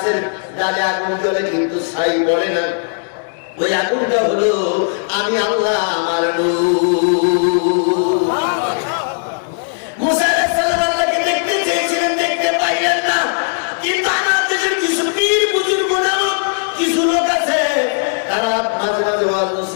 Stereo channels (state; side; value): silent; right; 68 dB below the other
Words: ডালে আগুন জ্বলে কিন্তু ছাই পড়ে না, ওই আগুনটা হলো আমি আল্লাহ, আমার নূর। মুসা আলাইহিস সালাম আল্লাহকে দেখতে চেয়েছিলেন, দেখতে পাইলেন না। কিন্তু আমার দেশের কিছু পীর বুজুর্গ নামক কিছু লোক আছে, তারা মাঝে মাঝে ওয়াজ